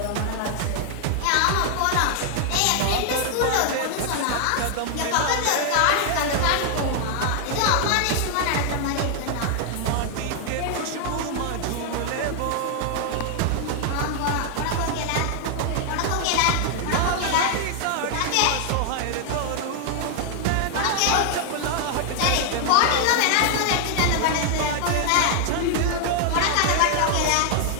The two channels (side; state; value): both; different; correlation 0.00